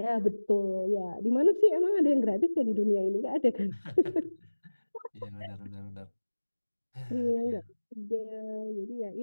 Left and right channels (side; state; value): both; inverted; correlation -1.00